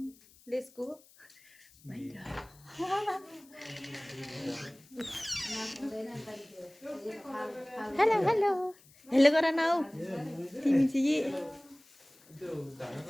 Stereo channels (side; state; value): left; noise; hiss, 27 dB below the sound